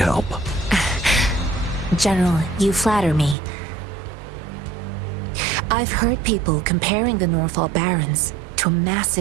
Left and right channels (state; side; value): drops out; left; at 3.4 s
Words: General, you flatter me. I've heard people comparing the Norfall Barrens to a